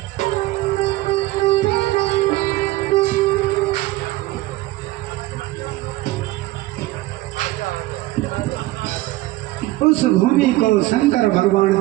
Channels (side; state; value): left; quieter; 18.3 dB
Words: उस भूमि को शंकर भगवान